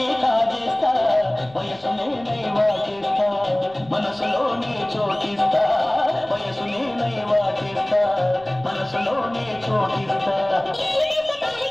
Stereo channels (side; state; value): left; noise; rumble, 28 dB below the sound